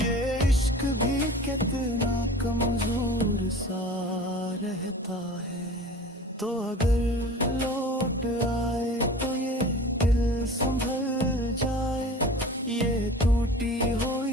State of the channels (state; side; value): normal; both; correlation 0.40